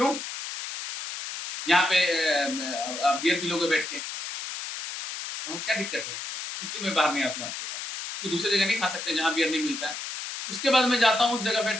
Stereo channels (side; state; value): left; noise; hiss, 7 dB below the sound